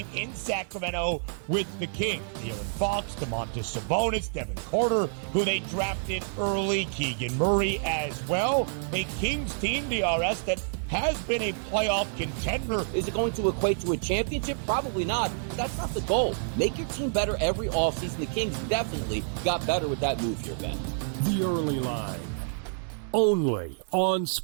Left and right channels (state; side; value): silent; left; digital silence